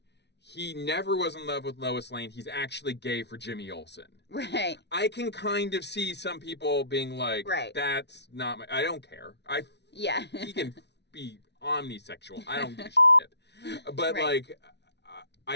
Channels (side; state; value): right; late; 0.50 ms